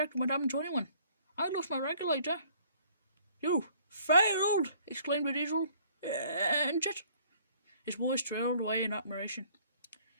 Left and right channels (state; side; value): inverted; both; correlation -0.58